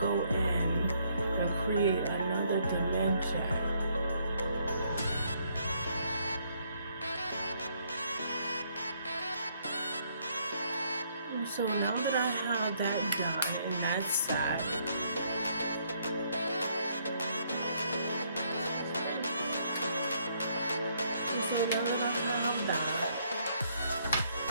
in and create another dimension. So now that I have that done and that's set, so now that I have that,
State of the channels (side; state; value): both; inverted; correlation -0.70